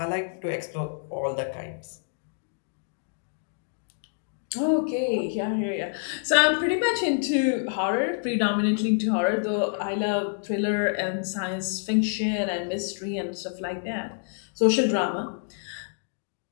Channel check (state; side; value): silent; right; digital silence